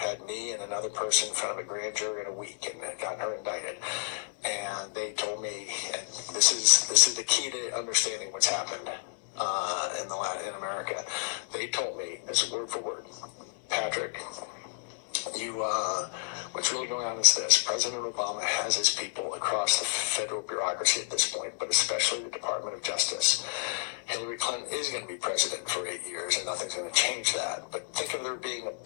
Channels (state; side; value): silent; right; digital silence